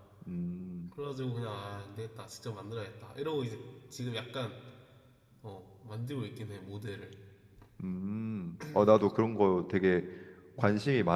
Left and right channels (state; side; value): identical; both; correlation 1.00